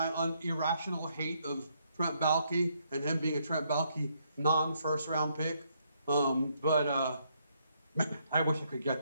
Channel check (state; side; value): inverted; both; correlation -0.73